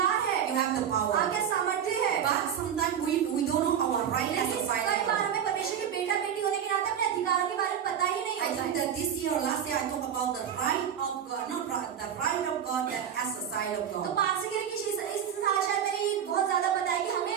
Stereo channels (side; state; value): left; quieter; 8.8 dB